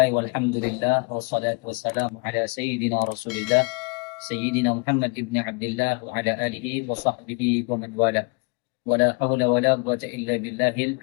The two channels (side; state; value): right; quieter; 32.3 dB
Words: walhamdulillah wassalatu wassalamu ala sayyidina Rasulillah Sayyidina Muhammad ibn Abdullah wa ala alihi wa sahbihi wa man wala. Wala hawla wala quwwata illa billahil